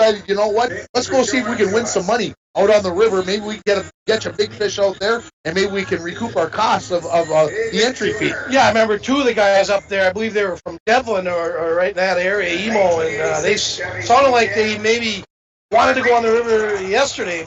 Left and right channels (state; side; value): identical; both; correlation 1.00